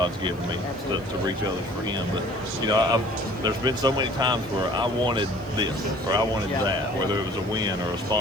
given me to reach others for Him. But there's been so many times where I wanted this or I wanted that, whether it was a win or a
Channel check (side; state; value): left; noise; hiss, 28 dB below the sound